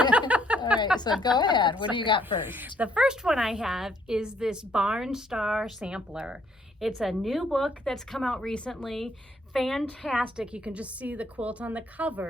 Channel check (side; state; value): both; normal; correlation 0.67